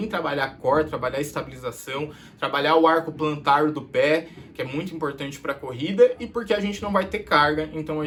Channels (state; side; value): identical; both; correlation 1.00